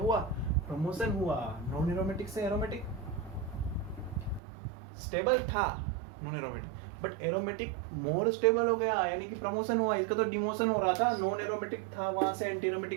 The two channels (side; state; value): left; drops out; at 4.4 s